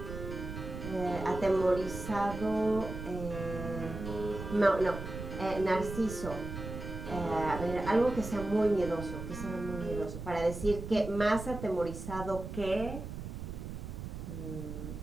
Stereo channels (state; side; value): noise; right; rumble, 8 dB below the sound